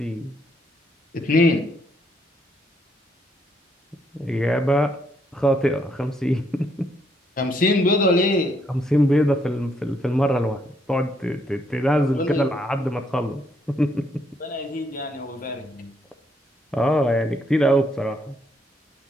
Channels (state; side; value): normal; both; correlation 0.73